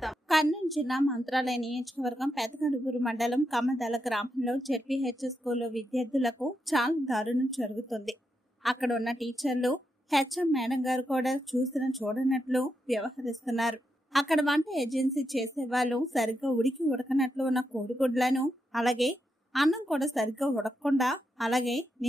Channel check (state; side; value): normal; both; correlation 0.84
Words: కర్నూలు జిల్లా మంత్రాలయ నియోజకవర్గం పెదకడుగురు మండలం కమ్మదల గ్రామంలో జెడ్పీహెచ్ స్కూల్లో విద్యార్థులకు చాలా దారుణం జరుగుతుంది. అక్కడ ఉన్న టీచర్లు హెచ్ఎం మేడం గారు కూడా చూడనట్లు వ్యవహరిస్తున్నారు. అక్కడ వంట ఏజెన్సీ చేసే వాళ్ళు సరిగ్గా ఉడకనట్లు ఉన్న కోడిగుడ్లను, అలాగే అన్నం కూడా సరిగ్గా ఉడకకుండా, అలాగే